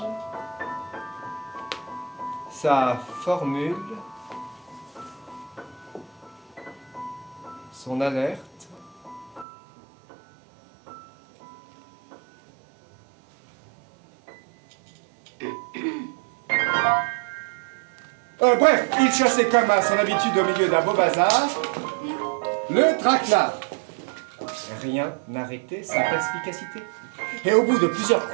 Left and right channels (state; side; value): drops out; left; at 9.5 s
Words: sa formule, son alerte. Bref, il chassait comme à son habitude au milieu d'un beau bazar le traquenard. Rien n'arrêtait sa perspicacité. Et au bout de plusieurs